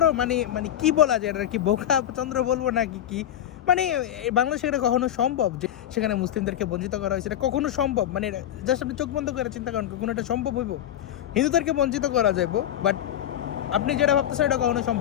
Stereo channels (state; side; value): quieter; right; 11.3 dB